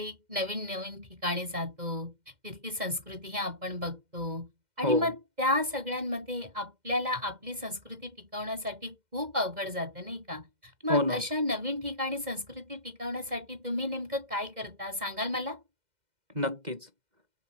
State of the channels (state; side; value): late; left; 2.1 ms